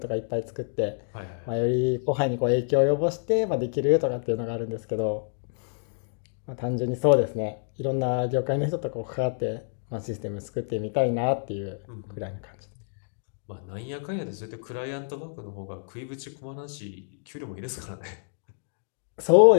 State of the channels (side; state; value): right; silent; digital silence